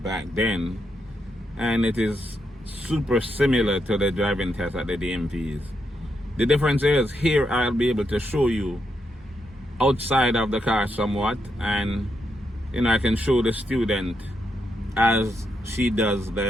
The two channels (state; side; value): normal; both; correlation 0.81